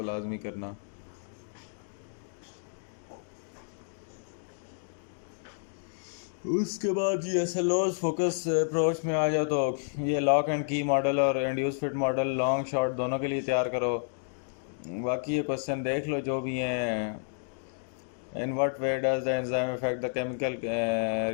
लाजमी करना। उसके बाद ये एसएलओज फोकस अप्रोच में आ जाओ तो ये लॉक एंड की मॉडल और induce fit model long short दोनों के लिए तैयार करो। बाकी ये क्वेश्चन देख लो जो भी हैं। In what way does the enzyme effect the chemical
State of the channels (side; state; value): right; silent; digital silence